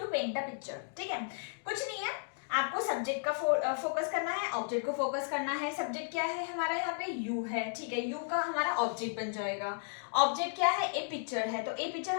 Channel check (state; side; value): silent; right; digital silence